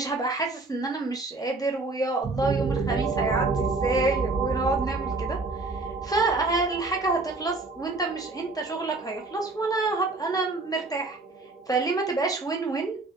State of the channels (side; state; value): left; quieter; 3.3 dB